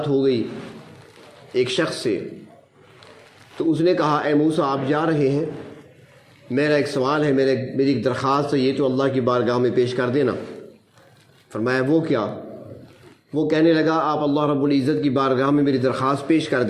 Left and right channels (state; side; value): identical; both; correlation 1.00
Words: ہو گئی ایک شخص سے۔ تو اس نے کہا اے موسیٰ آپ جا رہے ہیں، میرا ایک سوال ہے، میری ایک درخواست ہے، یہ تو اللہ کی بارگاہ میں پیش کر دینا۔ فرمایا وہ کیا؟ وہ کہنے لگا آپ اللہ رب العزت کی بارگاہ میں میری درخواست پیش کر